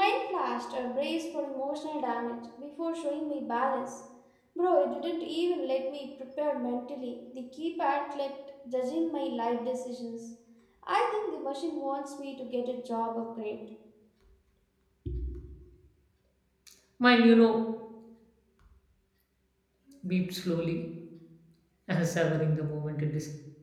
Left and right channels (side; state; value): both; identical; correlation 1.00